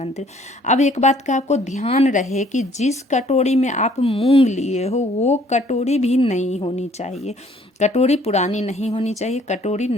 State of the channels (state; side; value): normal; both; correlation 0.60